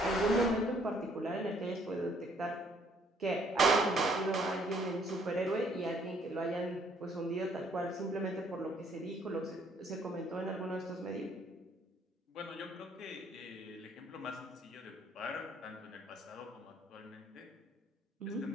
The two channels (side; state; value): both; normal; correlation 0.64